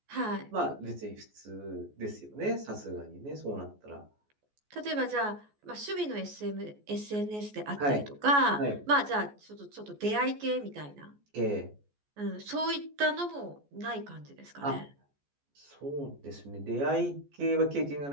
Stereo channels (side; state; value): left; late; 14 ms